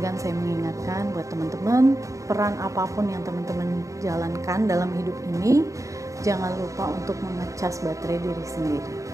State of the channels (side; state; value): left; late; 0.16 ms